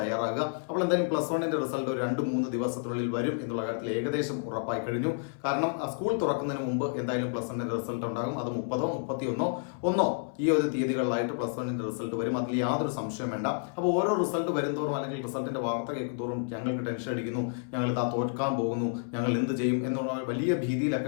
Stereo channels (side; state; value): right; silent; 58 dB below the other